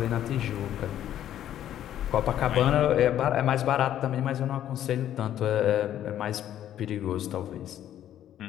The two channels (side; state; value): right; quieter; 11.3 dB